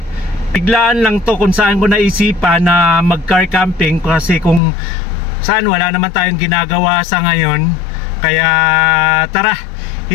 Biglaan lang to kung saan ko naisipan na mag-car camping, kasi kung saan wala naman tayong ginagawa sa ngayon. Kaya tara,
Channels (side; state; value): right; drops out; at 4.6 s